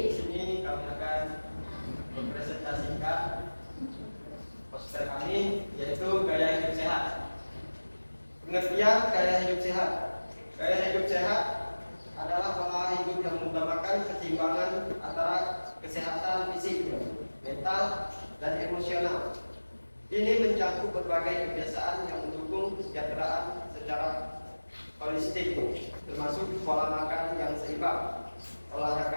Di sini kami akan mempresentasikan poster kami, yaitu gaya hidup sehat. Pengertian gaya hidup sehat. Gaya hidup sehat adalah pola hidup yang mengutamakan keseimbangan antara kesehatan fisik, mental, dan emosional. Ini mencakup berbagai kebiasaan yang mendukung kesejahteraan secara holistik, termasuk pola makan yang seimbang,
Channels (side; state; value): both; inverted; correlation -1.00